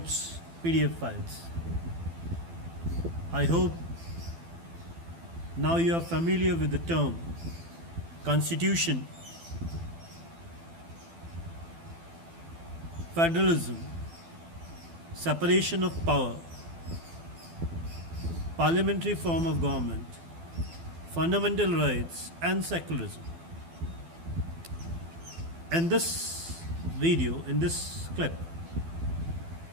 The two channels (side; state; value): left; late; 12 ms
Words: PDF files. I hope now you are familiar with the term Constitution, federalism, separation of power, parliamentary form of government, fundamental rights, and secularism. In this video, in this clip,